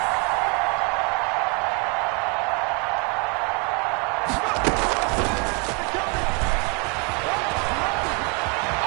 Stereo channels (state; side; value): quieter; left; 33.4 dB